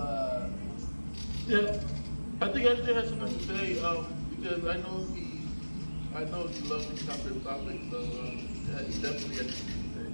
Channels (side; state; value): both; inverted; correlation -1.00